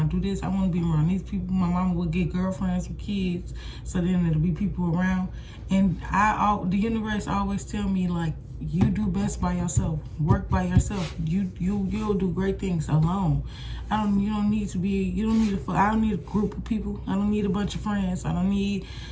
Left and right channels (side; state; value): both; identical; correlation 1.00